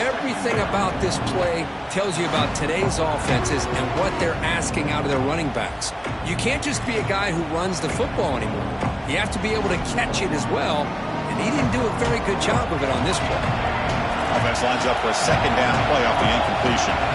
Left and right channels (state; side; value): identical; both; correlation 1.00